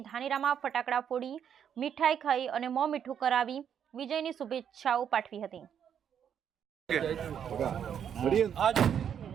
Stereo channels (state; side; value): quieter; left; 8.5 dB